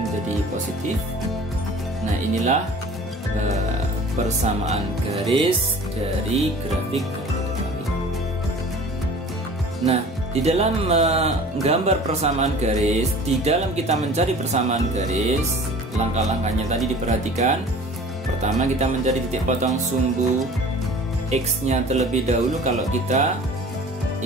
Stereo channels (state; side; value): normal; both; correlation 0.44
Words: menjadi positif. Nah, inilah persamaan garis dari grafik. Nah, di dalam menggambar persamaan garis, di dalam kita mencari persamaan garis, langkah-langkahnya tadi diperhatikan. Pertama, kita mencari titik potong sumbu X nya terlebih dahulu kalau kita